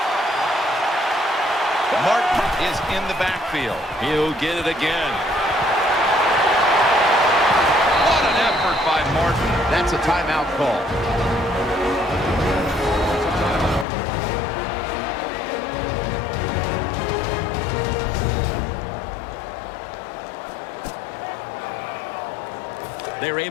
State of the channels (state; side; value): drops out; right; at 13.9 s